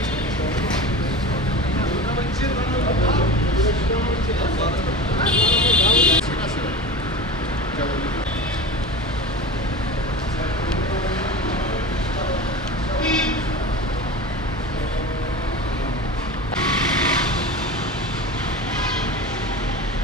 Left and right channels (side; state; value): both; normal; correlation 0.32